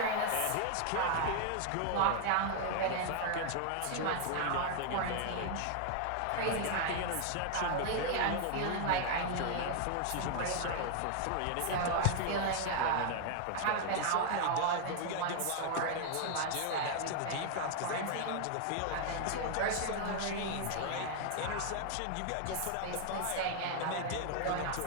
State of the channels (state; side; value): different; both; correlation 0.00